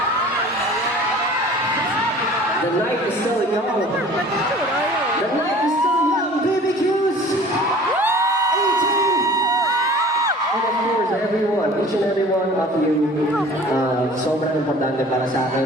The night is still young. The night is still young. BBQs! 18! And of course, everyone, each and every one of you, sobrang importante para sa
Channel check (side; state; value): both; normal; correlation 0.46